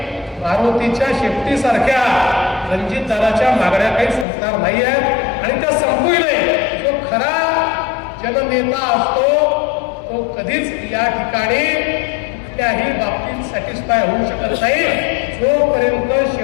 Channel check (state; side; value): drops out; right; at 4.2 s